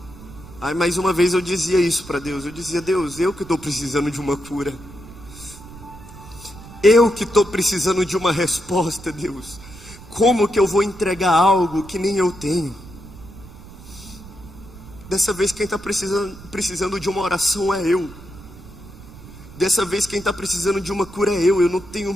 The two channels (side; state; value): right; noise; rumble, 17 dB below the sound